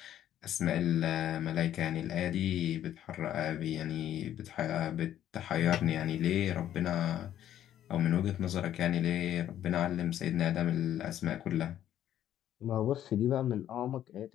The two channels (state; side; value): quieter; right; 11.4 dB